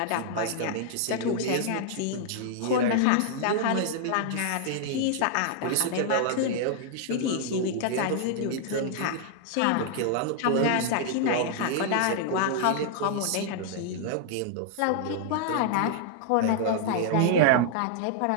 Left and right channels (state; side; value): different; both; correlation -0.01